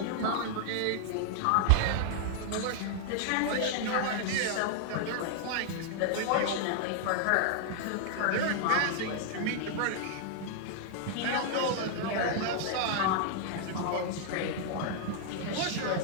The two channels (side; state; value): both; different; correlation -0.01